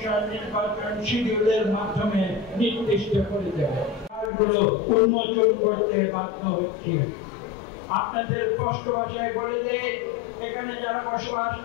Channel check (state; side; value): drops out; right; at 4.3 s